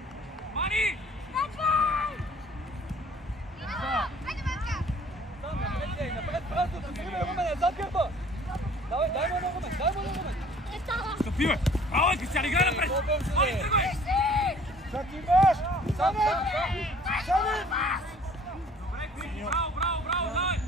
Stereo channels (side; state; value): both; normal; correlation 0.53